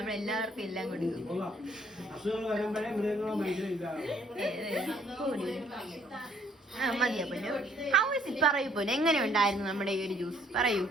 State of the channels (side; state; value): both; normal; correlation 0.64